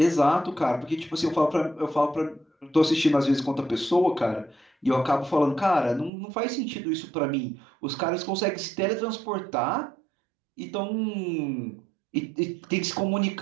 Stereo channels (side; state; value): left; drops out; at 6.1 s